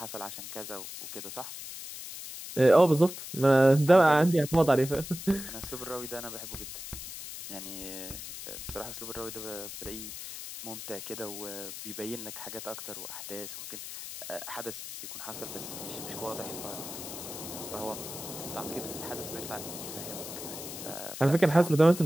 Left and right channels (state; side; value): noise; left; hiss, 10 dB below the sound